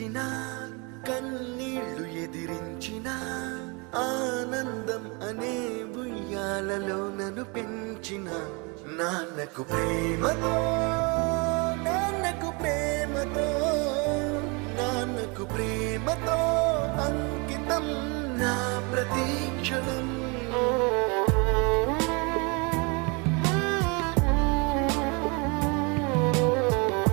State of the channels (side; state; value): left; quieter; 30.3 dB